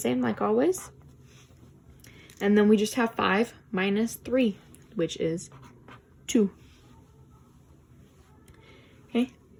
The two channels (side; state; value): both; identical; correlation 1.00